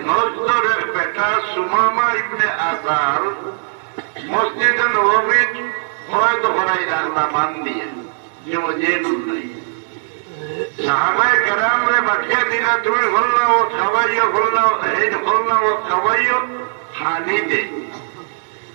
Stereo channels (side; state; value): left; silent; 67 dB below the other